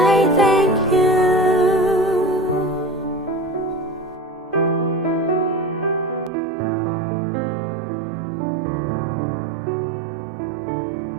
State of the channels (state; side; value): drops out; left; at 6.3 s